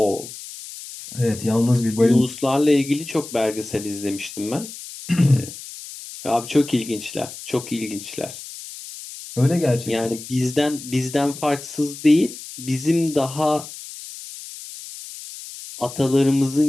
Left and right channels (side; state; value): left; noise; hiss, 13 dB below the sound